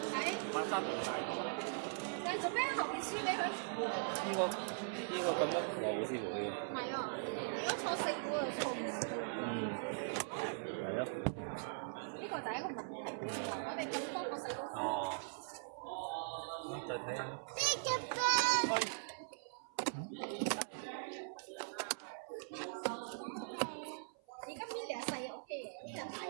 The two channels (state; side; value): silent; left; 50 dB below the other